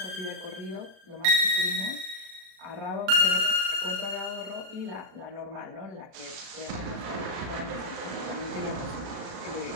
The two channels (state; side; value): late; left; 36 ms